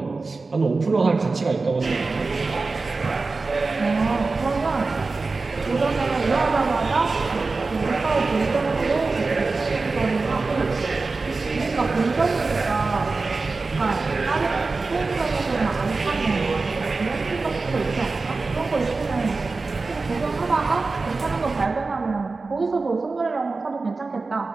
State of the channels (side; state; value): left; quieter; 3.9 dB